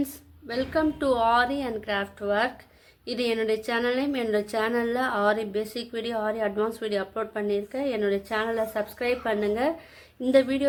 welcome to aari and craft work. இது என்னுடைய சேனல்லையும் என்னோடய சேனலில் ஆரி பேசிக் வீடியோ, ஆரி அட்வான்ஸ் வீடியோ அப்லோட் பண்ணியிருக்கேன். என்னுடைய சேனலை சப்ஸ்கிரைப் பண்ணுங்கள். இந்த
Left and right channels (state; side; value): identical; both; correlation 1.00